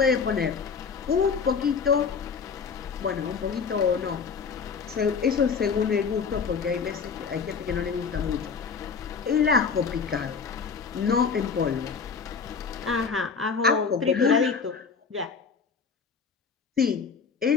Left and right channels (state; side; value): quieter; right; 5.6 dB